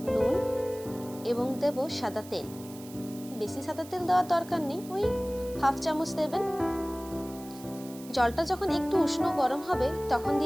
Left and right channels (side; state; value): right; noise; hiss, 18 dB below the sound